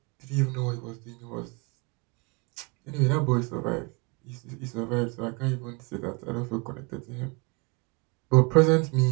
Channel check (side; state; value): left; quieter; 30.1 dB